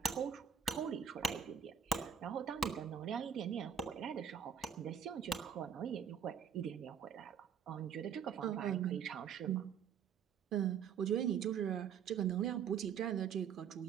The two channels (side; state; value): left; quieter; 7.7 dB